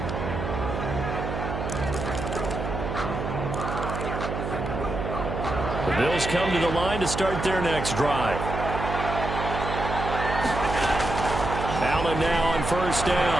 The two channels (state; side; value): noise; right; hum, 4 dB below the sound